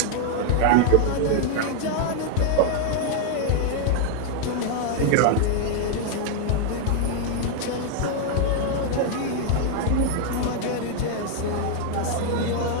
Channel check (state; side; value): different; both; correlation 0.00